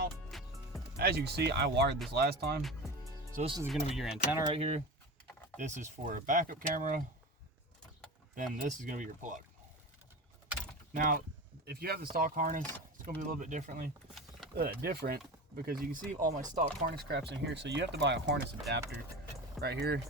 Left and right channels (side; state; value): both; normal; correlation 0.29